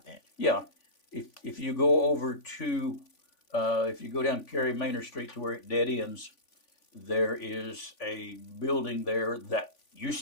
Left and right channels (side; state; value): right; late; 3.5 ms